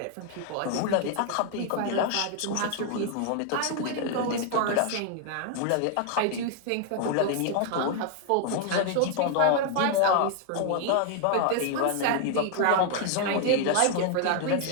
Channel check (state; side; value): different; both; correlation 0.00